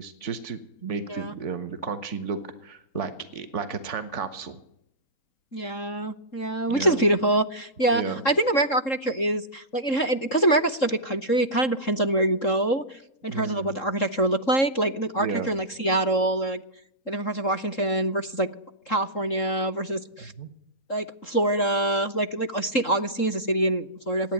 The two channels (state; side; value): late; right; 3.7 ms